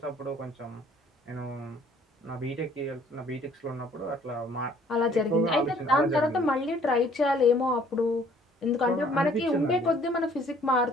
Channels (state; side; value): normal; both; correlation 0.58